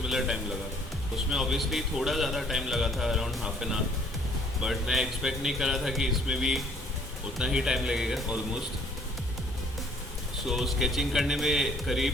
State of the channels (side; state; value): both; normal; correlation 0.60